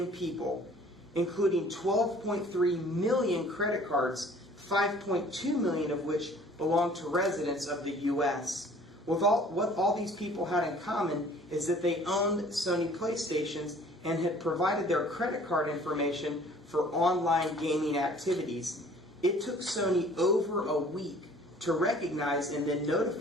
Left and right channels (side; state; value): both; normal; correlation 0.52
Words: people, including 12.3 million credit cards, 5.2 million of which belong to residents of the U.S. What all these people had in common is that they owned Sony PlayStations and had provided their credit card information for online gaming activities. It took Sony over a week to recognize and then